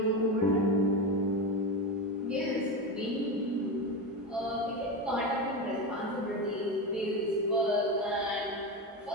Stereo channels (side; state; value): both; normal; correlation 0.18